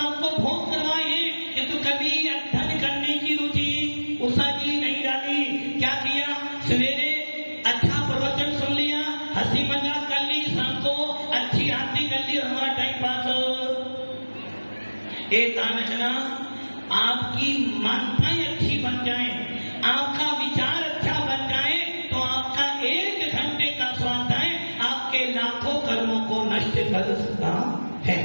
को भोग करवाए हैं, किंतु कभी अध्ययन करने की रुचि उषा जी नहीं डाली। क्या किया? सवेरे अच्छा प्रवचन सुन लिया, हंसी मजाक कर ली, शाम को अच्छी आरती कर ली, हमारा टाइम पास। एक आना आपकी मान्यताएं अच्छी बन जाए, आपका विचार अच्छा बन जाए, तो आपका 1 घंटे का स्वाध्याय आपके लाखों कर्मों को नष्ट कर सकता है।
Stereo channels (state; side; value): inverted; both; correlation -1.00